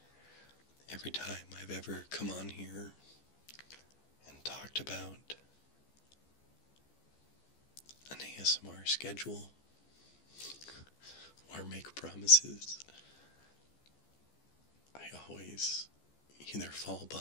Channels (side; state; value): right; late; 14 ms